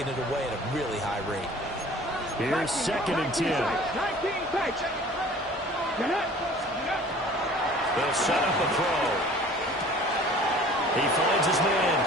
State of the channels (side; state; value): both; normal; correlation 0.48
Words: it away at a really high rate. Here's 2nd and 10. They'll set up a throw. He finds his man